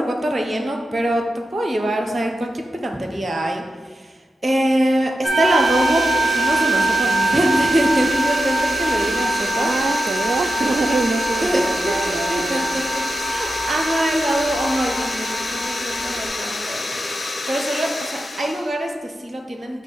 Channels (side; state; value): both; normal; correlation 0.88